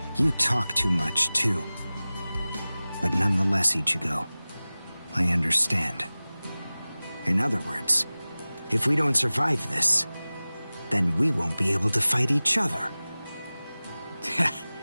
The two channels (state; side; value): inverted; both; correlation -0.98